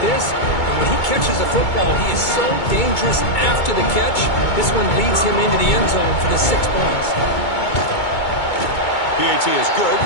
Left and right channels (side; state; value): right; late; 2.2 ms